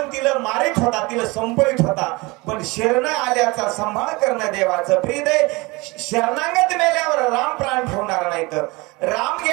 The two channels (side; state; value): left; quieter; 24.4 dB